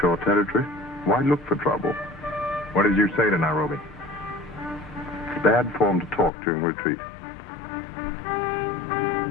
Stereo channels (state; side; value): drops out; right; at 6.3 s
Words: your territory. Why look for trouble? What did you say to Nairobi? It's bad form to talk during retreat.